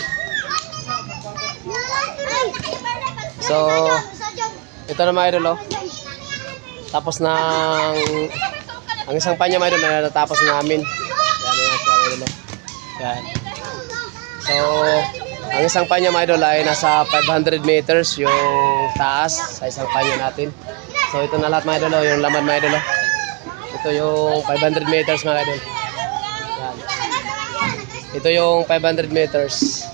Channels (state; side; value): quieter; left; 30.0 dB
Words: So, ito na mga idol, oh. Tapos ng ang isang panya mga idol na natapos namin. Yan yan siya, idol, oh. Yan. So, ang isang panya mga idol ay nasa 500 meters yung taas sa isang panya natin. So, ito na lahat mga idol, oh, yung laman mga idol, oh. Ito yung 500 meters mga idol. Yan. Ito yung 500 meters.